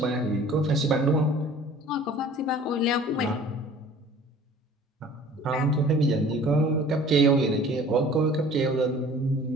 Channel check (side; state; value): both; normal; correlation 0.48